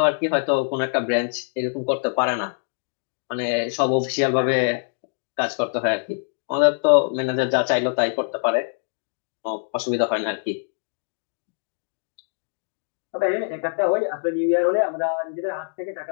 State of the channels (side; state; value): right; silent; digital silence